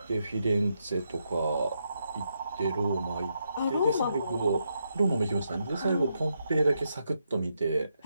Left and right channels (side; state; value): both; inverted; correlation -0.81